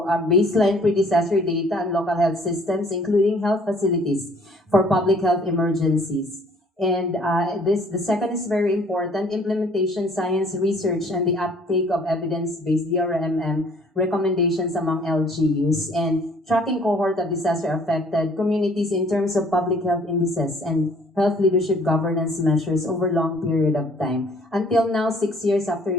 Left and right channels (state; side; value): normal; both; correlation 0.57